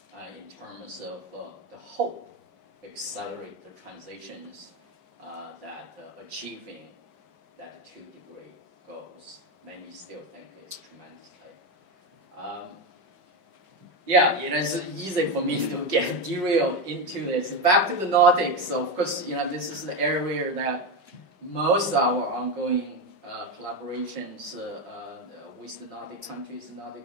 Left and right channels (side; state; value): left; late; 5.2 ms